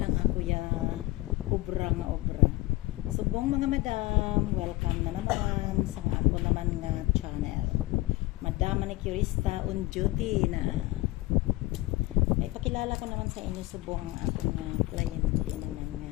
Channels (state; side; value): quieter; right; 19.6 dB